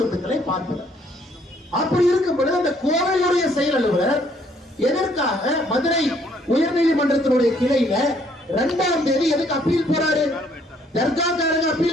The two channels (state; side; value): normal; both; correlation 0.65